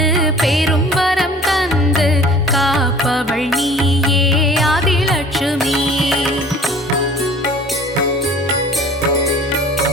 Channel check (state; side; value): normal; both; correlation 0.47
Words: பெரும் வரம் தந்து காப்பவள் நீயே ஆதிலட்சுமி.